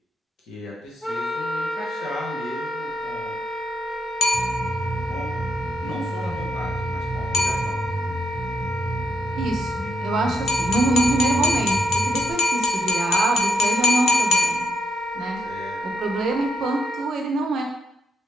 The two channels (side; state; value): both; normal; correlation 0.77